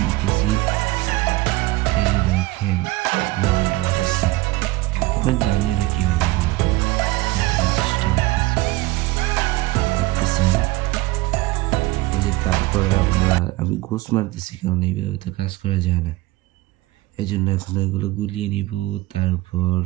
দিতেছি। এই যে দেখেন লবণ ঢালতেছি। আমরা জানি না কিভাবে চেষ্টা করতেছি, দেখতেছেন। এই যে তারপরে আমি ঘুষ মারতেছি, কারণ এইভাবে তো কাজ করা যায় না। এই জন্য এখন এগুলো গুলিয়ে নিব, তারপর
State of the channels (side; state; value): left; quieter; 19.6 dB